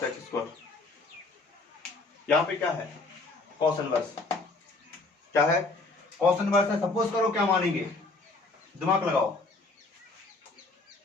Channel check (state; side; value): quieter; right; 3.4 dB